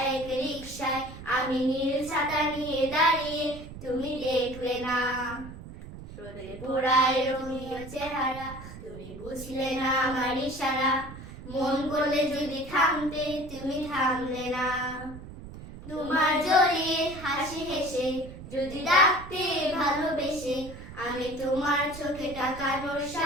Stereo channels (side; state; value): right; noise; rumble, 13 dB below the sound